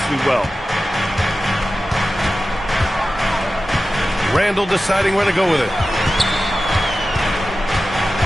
well. Randle deciding where to go with it.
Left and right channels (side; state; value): both; normal; correlation 0.94